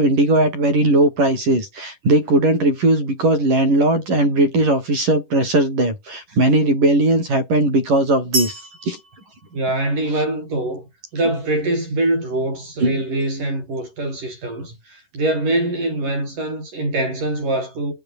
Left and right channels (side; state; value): left; late; 11 ms